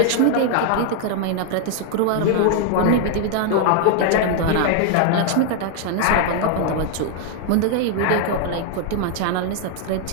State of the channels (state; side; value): different; both; correlation 0.00